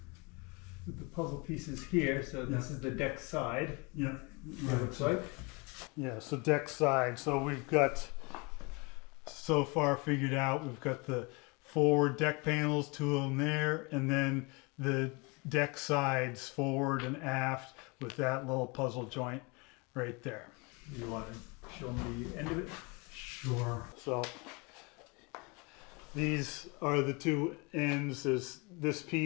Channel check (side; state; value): right; quieter; 28.6 dB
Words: puzzle pieces here. So this is the deck side. Yeah, It looks like. yeah. So deck side. So we've got so far figured out. We've got the forward deck panels, two of them there, and then the deck sides forward and aft with that little puzzle joint right there. You want to show me the end of it? Sure. So these are the two ends. There's this